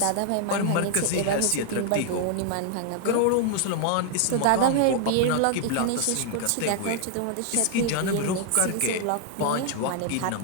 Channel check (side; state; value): both; different; correlation 0.00